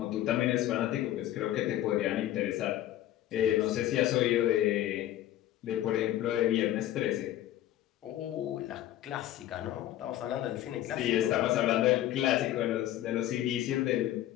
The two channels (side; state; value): right; quieter; 13.3 dB